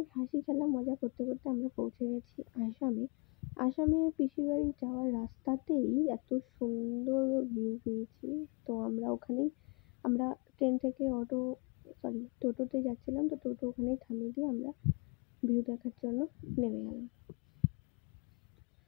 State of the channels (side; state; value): right; quieter; 32.4 dB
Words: হাসি খেলা মজা করতে করতে আমরা পৌঁছে গেছি আসামে পিসির বাড়ি যাওয়ার রাস্তাতেই এত সুন্দর ভিউ পেয়েছি। তো আমরা ট্রেন থেকে টোটোতে যাচ্ছিলাম, তো টোটো ওখানেই থামিয়ে দিয়ে আমরা ভিউ দেখার জন্য নেমে গেলাম।